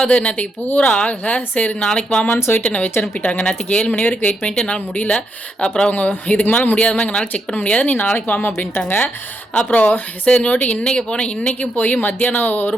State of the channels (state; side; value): normal; both; correlation 0.80